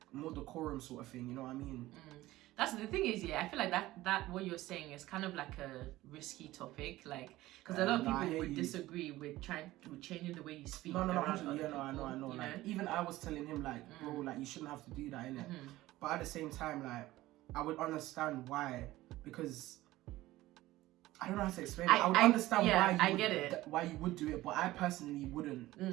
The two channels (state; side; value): quieter; left; 16.9 dB